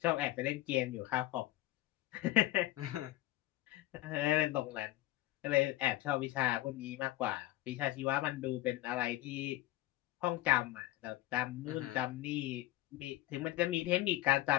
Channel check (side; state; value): right; quieter; 16.2 dB